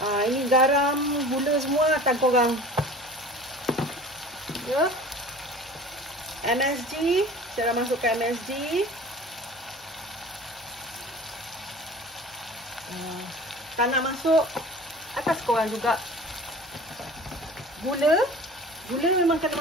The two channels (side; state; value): both; normal; correlation 0.41